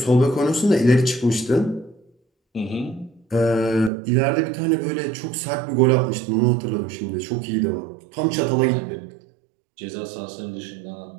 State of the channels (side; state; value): left; drops out; at 3.9 s